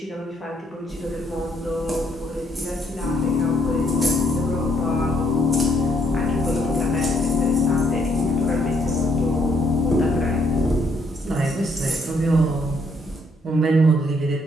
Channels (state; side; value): normal; both; correlation 0.71